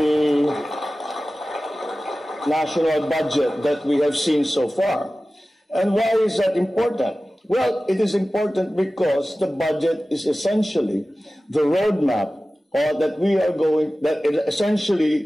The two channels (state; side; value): normal; both; correlation 0.96